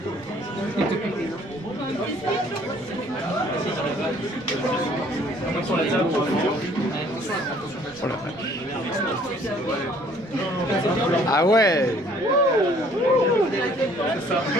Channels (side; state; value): right; noise; rumble, 25 dB below the sound